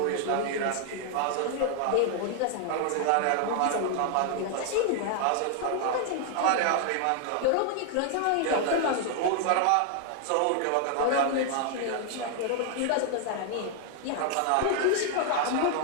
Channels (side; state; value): both; different; correlation 0.00